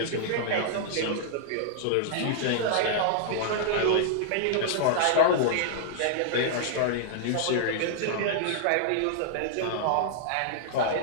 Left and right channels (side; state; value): both; different; correlation -0.01